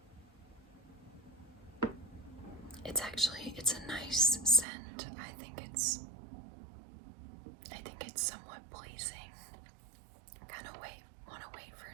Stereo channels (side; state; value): left; drops out; at 4.7 s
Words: It's a nice scent. I think it's somewhat pleasing. Want to wait for